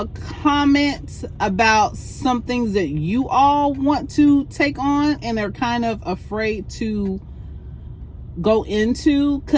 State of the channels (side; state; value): both; identical; correlation 1.00